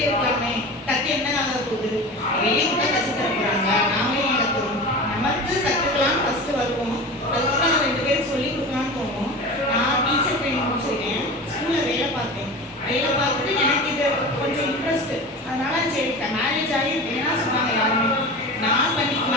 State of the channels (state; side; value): normal; both; correlation 0.32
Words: இருக்கலாமே, கற்று என்ன ஆக போகுது, வெளியே கூட கற்று தர போகிறாங்க, நாமளே ஏன் கற்றுக்கணும், நமக்கு கற்றுக்கலாம்னு ஃபஸ்ட்டு வருவோம், அதுக்கப்புறம் நான் 2 பேருக்கு சொல்லிக் கொடுக்கலான்னு தோணும். நான் டீச்சர் ட்ரைனிங் முடிச்சிருக்கேன், ஸ்கூலில் வேலை பார்த்தேன். வேலை பார்த்துட்டு எனக்கு இது கொஞ்சம் இன்ட்ரெஸ்ட்டு, அதனால சரி மேரேஜ் ஆகி வேணாம் சொன்னாங்க யாருமே.